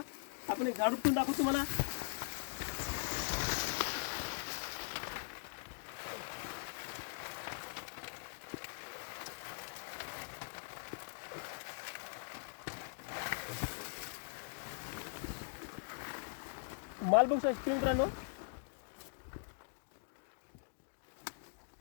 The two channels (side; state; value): right; silent; digital silence